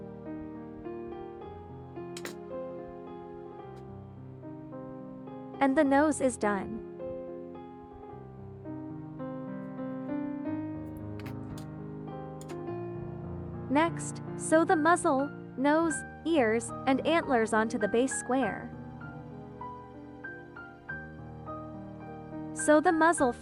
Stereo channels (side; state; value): both; identical; correlation 1.00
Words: And the nose is done. Next, sew the muzzle, nose, ears, and antlers onto the base square. Sew the muzzle